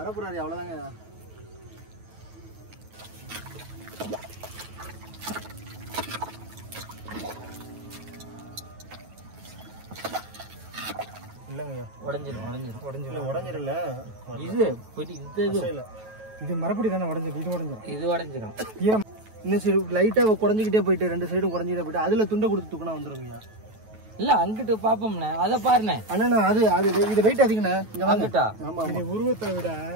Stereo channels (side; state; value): left; late; 9.2 ms